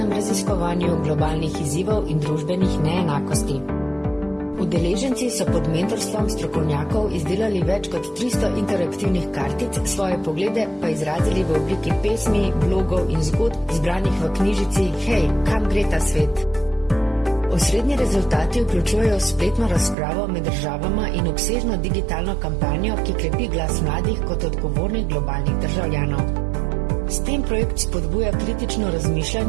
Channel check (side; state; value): left; drops out; at 20.0 s